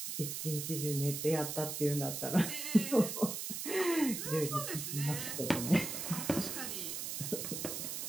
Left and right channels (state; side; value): noise; right; hiss, 4 dB below the sound